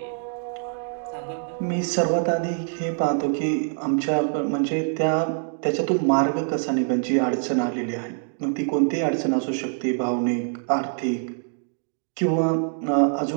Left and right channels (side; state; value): left; silent; digital silence